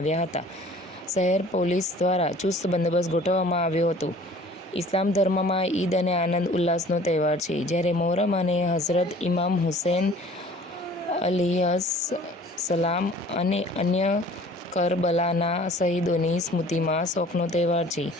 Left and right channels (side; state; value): both; normal; correlation 0.49